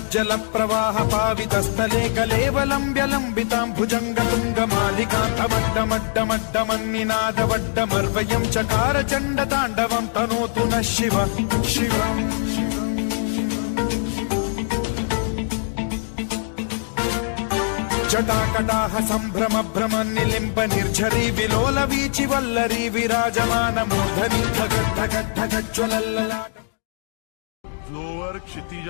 प्रवाह पावितस्थले कलेवलम्ब्य लम्बितां भुजङ्ग तुङ्ग मालिकान्तमड्डमड्डमड्डमन्निनादवड्डमर्वयं चकार चण्ड ताण्डवं तनोतु नः शिव शिवम् जटाकटाह सम्भ्रम भ्रम निलिम्ब निर्झरी विलोल वीचि वल्लरी विराजमान मूर्धनि धगद्धगद्धगज्ज्वलल्ललाट जोवर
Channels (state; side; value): silent; right; digital silence